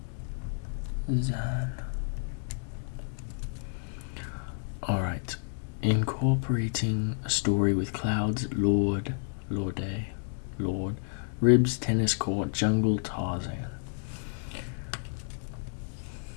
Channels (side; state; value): right; silent; 57 dB below the other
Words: Tarzan. Alright. Incorporating a story with clouds, Lord, ribs, tennis court, jungle, Tarzan.